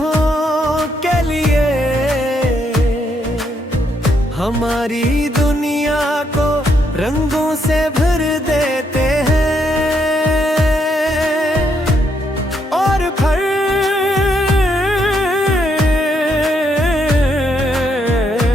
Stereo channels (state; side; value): normal; both; correlation 0.76